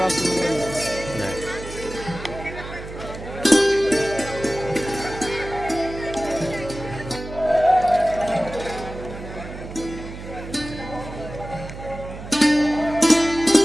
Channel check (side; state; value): right; noise; hum, 12 dB below the sound